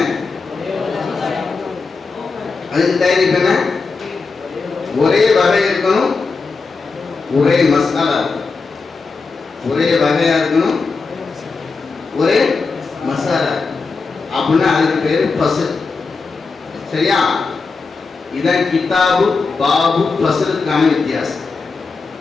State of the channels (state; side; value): quieter; right; 4.4 dB